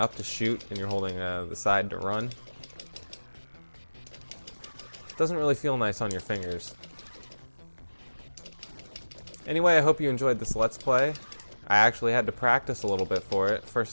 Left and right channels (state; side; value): inverted; both; correlation -1.00